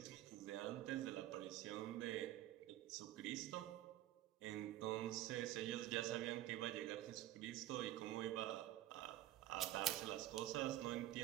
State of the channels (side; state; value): left; quieter; 14.1 dB